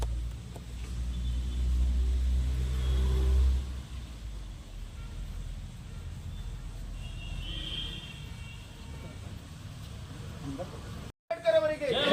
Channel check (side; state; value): both; identical; correlation 1.00